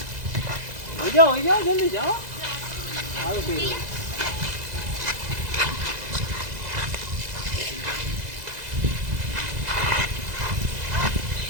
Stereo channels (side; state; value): left; late; 2.0 ms